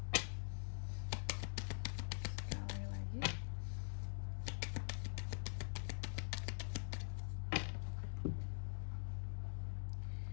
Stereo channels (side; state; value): right; silent; digital silence